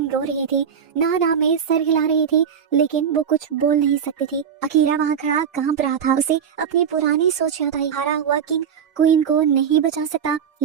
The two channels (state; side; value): quieter; left; 7.6 dB